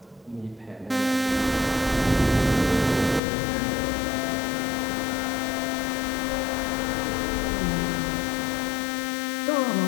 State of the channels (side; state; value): right; drops out; at 3.2 s